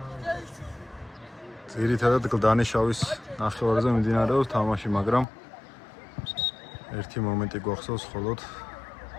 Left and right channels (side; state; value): right; drops out; at 5.2 s